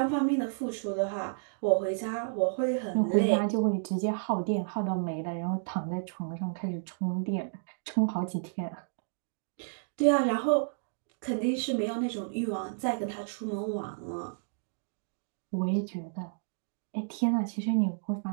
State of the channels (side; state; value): left; silent; digital silence